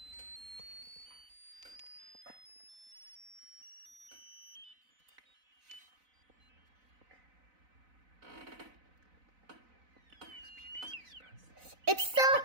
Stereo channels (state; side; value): late; left; 4.0 ms